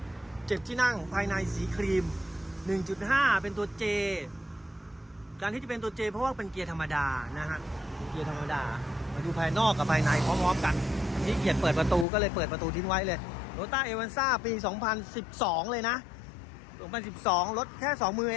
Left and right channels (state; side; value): drops out; right; at 12.1 s